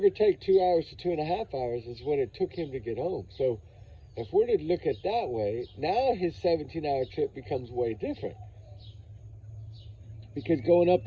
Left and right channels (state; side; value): identical; both; correlation 1.00